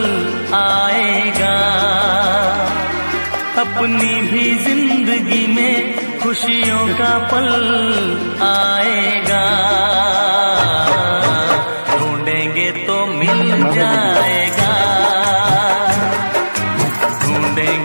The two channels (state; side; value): inverted; both; correlation -1.00